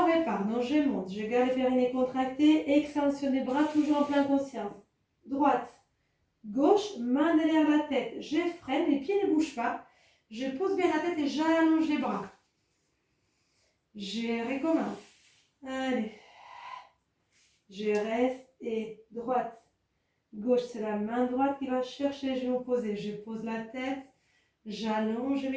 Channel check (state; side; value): identical; both; correlation 1.00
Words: repart. Donc je monte. Je garde les périnées contractés. Extension des bras, toujours en pleine conscience. Droite, gauche, main derrière la tête. Je freine, les pieds ne bougent pas. Je pose bien la tête et j'allonge les bras. Je recommence. Allez. Je reste et droite, gauche, c'est la main droite qui va chercher les genoux posés. Je pose la tête, j'allonge, je